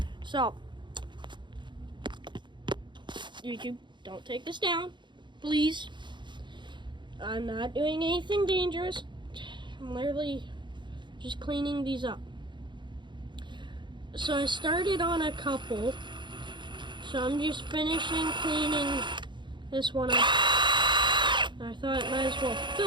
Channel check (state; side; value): late; left; 0.23 ms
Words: So, YouTube, don't take this down, please. I'm not doing anything dangerous. I'm literally just cleaning these up. So I started on a couple. So I'm just finishing cleaning this one up. I thought I might as well